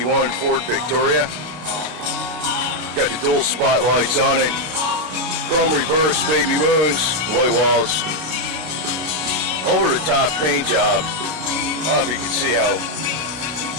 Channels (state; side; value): late; left; 33 ms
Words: Ford Victoria. Got the dual spotlights on it. Chrome reverse, baby moons, white walls. Over the top paint job. I don't know if you can see how